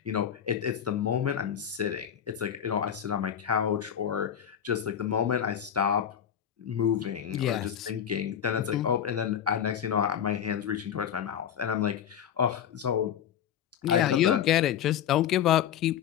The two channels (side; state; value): right; quieter; 9.2 dB